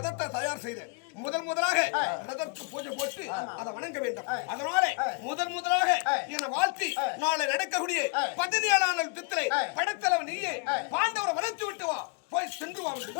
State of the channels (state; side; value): quieter; right; 32.7 dB